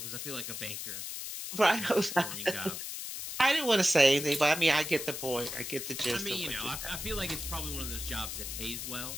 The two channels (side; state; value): left; noise; hiss, 6 dB below the sound